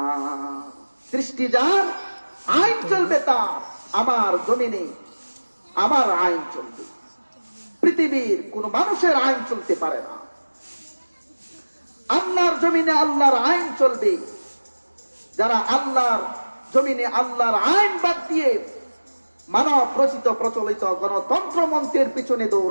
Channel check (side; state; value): both; inverted; correlation -1.00